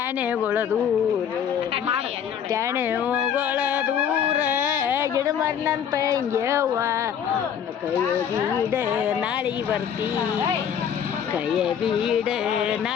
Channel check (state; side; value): quieter; right; 8.5 dB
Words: ದೂರ ಟ್ಯಾಣೆಗಳ ದೂರ ಗಿಡ ಮಾರಿನಂತ ಹಿಂಗ್ಯವ್ವ ಕೈಯ ಬೀಡ ನಾಳೆಗೆ ಬರ್ತಿ ಕೈಯ ಬೀಡ